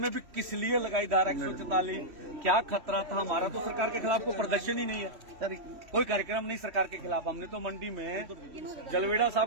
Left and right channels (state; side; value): late; left; 3.1 ms